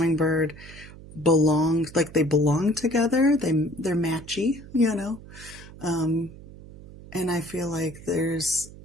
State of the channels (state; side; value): noise; right; hum, 17 dB below the sound